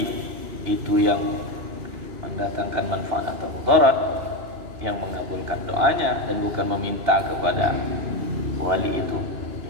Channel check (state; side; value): late; left; 2.8 ms